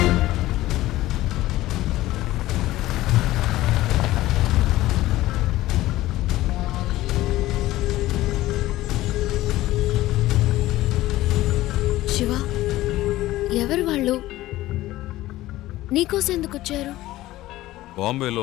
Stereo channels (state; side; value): quieter; right; 16.4 dB